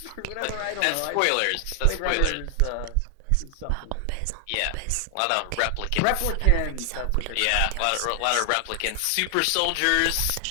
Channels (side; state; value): both; different; correlation 0.00